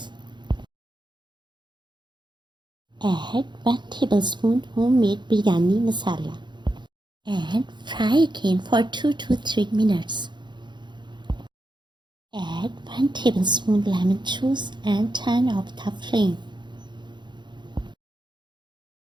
Add 1 tablespoon homemade biryani masala and fry again for 2 to 3 minutes. Add 1 tablespoon lemon juice and turn off the flame.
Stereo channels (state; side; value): late; left; 0.22 ms